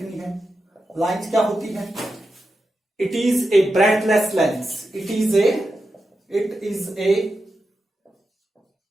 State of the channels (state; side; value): normal; both; correlation 0.89